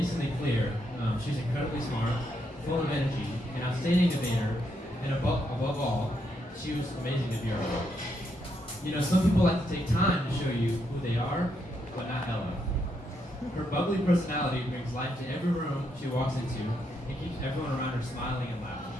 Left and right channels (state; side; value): normal; both; correlation 0.78